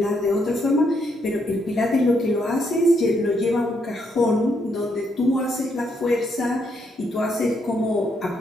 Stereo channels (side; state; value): both; normal; correlation 0.76